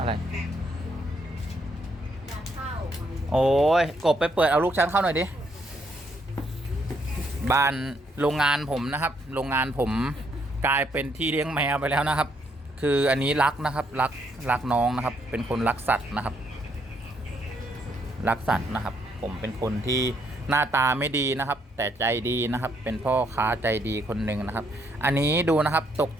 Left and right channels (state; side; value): normal; both; correlation 0.73